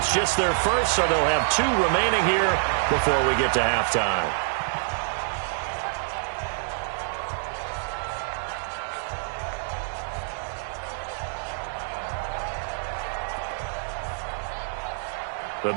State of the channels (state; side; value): silent; left; digital silence